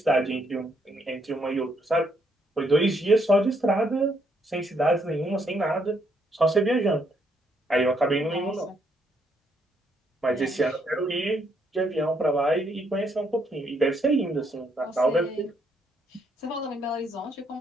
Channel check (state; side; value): normal; both; correlation 0.73